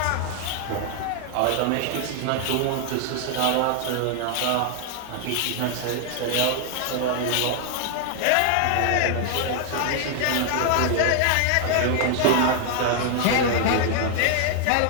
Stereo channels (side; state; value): both; different; correlation 0.00